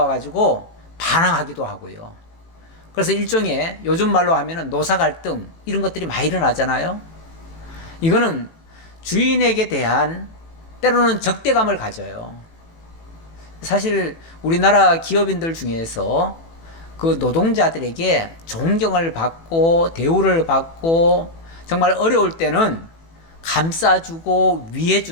가지고 반항하기도 하고요. 그래서 일종의 요즘 말로 하면은 노사 갈등, 이런 것들이 많이 일어나잖아요. 이거는 주인에게 대한 때로는 적대감을 가져요. 사실 우리나라 기업인들 중에서 그 노동자들에게 존경을 받고 대우를 받고 정말 어려울 때는 감싸주고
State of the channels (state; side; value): late; right; 18 ms